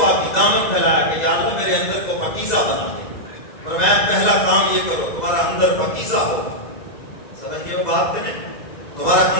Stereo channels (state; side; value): late; right; 2.3 ms